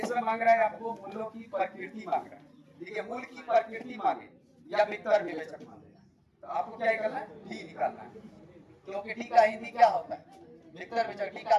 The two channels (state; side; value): identical; both; correlation 1.00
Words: मांग रहा है आपको मूलों की प्रकृति मांग रहा है। देखिए मूल की प्रकृति मांगे या विकर विवेचक मांगे तो आपको क्या करना है, डी निकालना है, क्योंकि डी का हिंदी क्या होता है, विकर विवेचक।